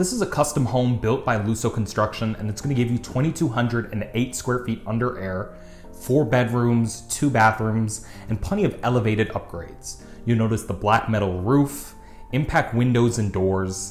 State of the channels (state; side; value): identical; both; correlation 1.00